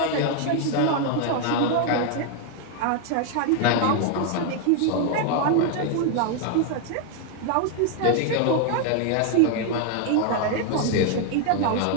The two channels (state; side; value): different; both; correlation 0.00